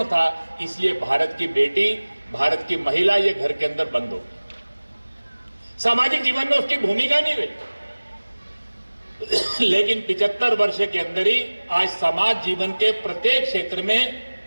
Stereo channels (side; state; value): both; inverted; correlation -1.00